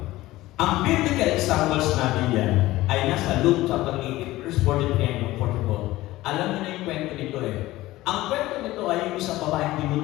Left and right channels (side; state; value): right; quieter; 17.3 dB